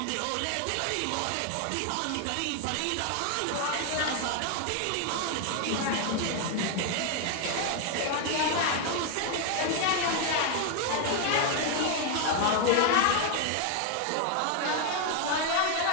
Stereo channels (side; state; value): both; different; correlation 0.00